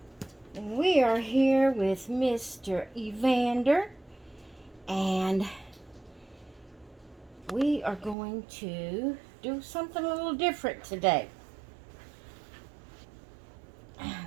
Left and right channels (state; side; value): drops out; left; at 8.2 s